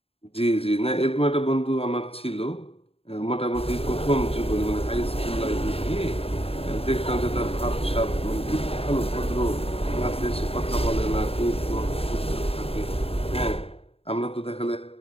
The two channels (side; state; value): right; late; 0.28 ms